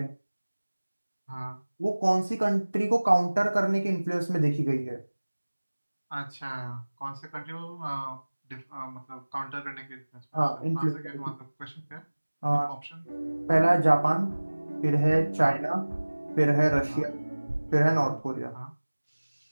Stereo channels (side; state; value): both; inverted; correlation -1.00